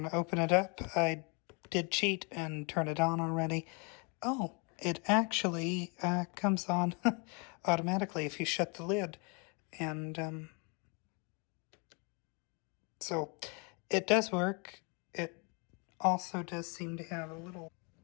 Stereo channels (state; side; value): quieter; right; 33.3 dB